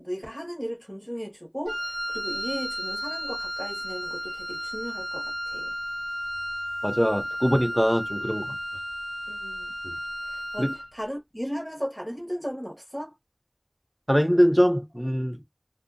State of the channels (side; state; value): both; identical; correlation 1.00